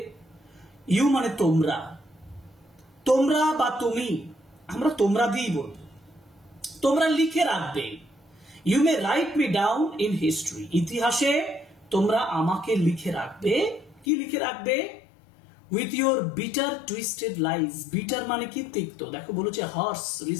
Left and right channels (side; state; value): right; drops out; at 14.1 s